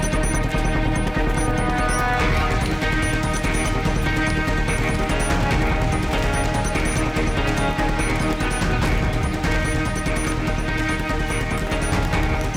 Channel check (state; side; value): identical; both; correlation 1.00